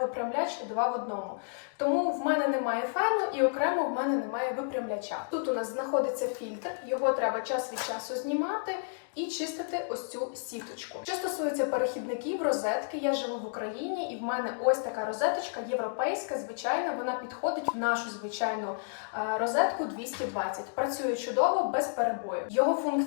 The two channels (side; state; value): right; silent; digital silence